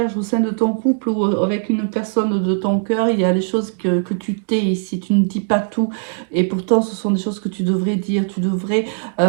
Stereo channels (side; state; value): left; silent; digital silence